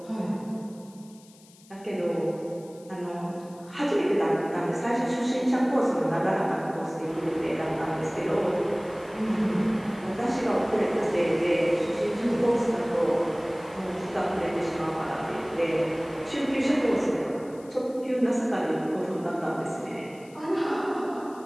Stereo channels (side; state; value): left; noise; hiss, 26 dB below the sound